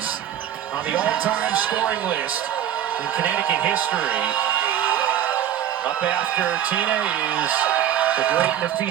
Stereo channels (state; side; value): quieter; left; 10.7 dB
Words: on the all-time scoring list in Connecticut history. Up after Tina is the great